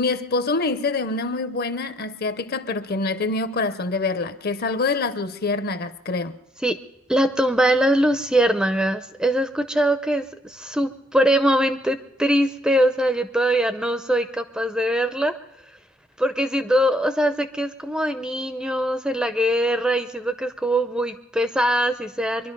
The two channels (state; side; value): normal; both; correlation 0.68